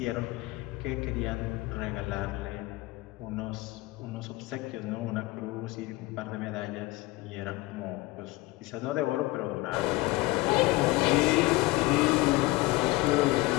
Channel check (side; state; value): right; quieter; 20.5 dB